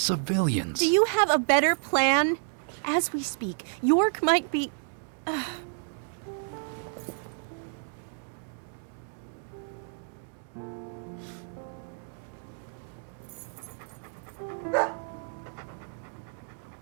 Do you have a better plan? As we speak, York might be...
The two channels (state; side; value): silent; left; 58 dB below the other